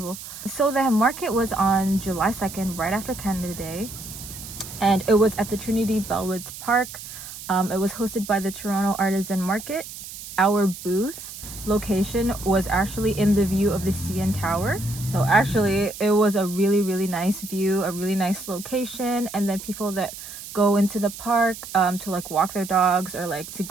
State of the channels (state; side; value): noise; right; hiss, 12 dB below the sound